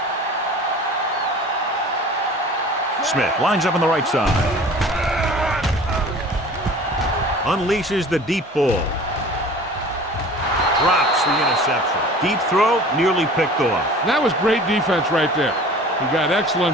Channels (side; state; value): both; normal; correlation 0.43